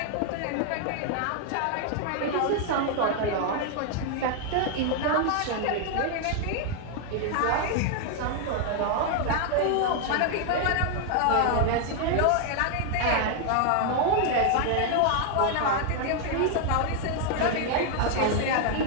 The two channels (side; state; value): both; different; correlation 0.00